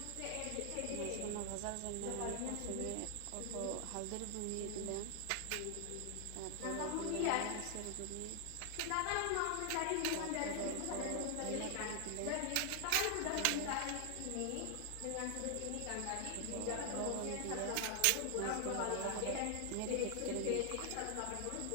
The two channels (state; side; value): different; both; correlation 0.00